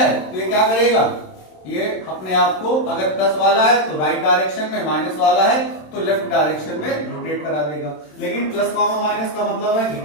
तो ये क्या करेगा, ये अपने आप को अगर प्लस वाला है तो राइट डायरेक्शन में, माइनस वाला है तो लेफ्ट डायरेक्शन में रोटेट करा देगा। लेकिन प्लस कॉमा माइनस का मतलब है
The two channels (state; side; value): late; right; 27 ms